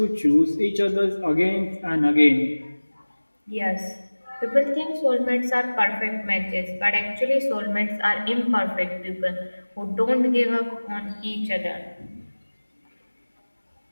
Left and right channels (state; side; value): inverted; both; correlation -1.00